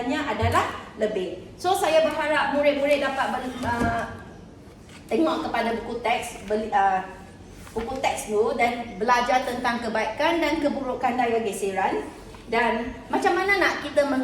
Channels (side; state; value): both; identical; correlation 1.00